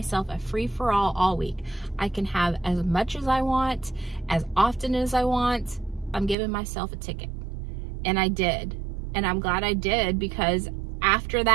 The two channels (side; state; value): left; drops out; at 6.4 s